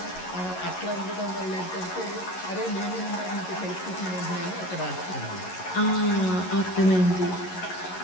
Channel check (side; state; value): right; late; 11 ms